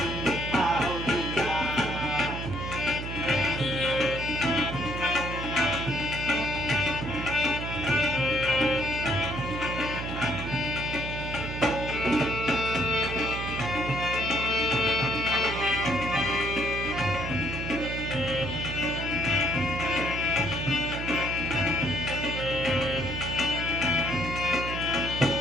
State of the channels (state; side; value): noise; right; hum, 6 dB below the sound